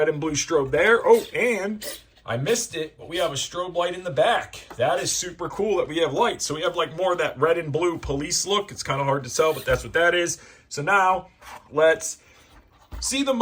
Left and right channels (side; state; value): both; identical; correlation 1.00